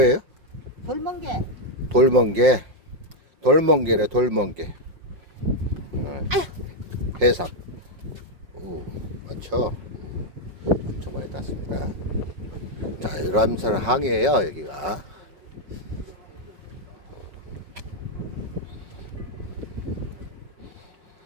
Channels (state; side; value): late; left; 5.6 ms